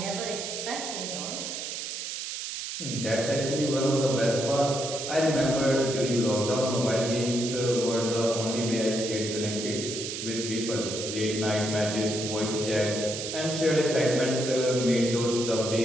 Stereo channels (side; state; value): right; noise; hiss, 6 dB below the sound